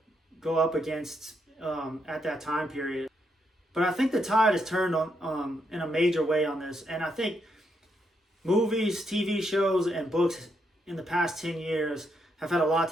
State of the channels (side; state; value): both; normal; correlation 0.79